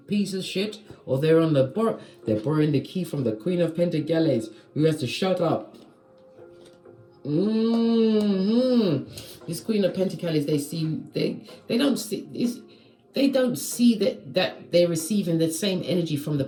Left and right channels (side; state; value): both; identical; correlation 1.00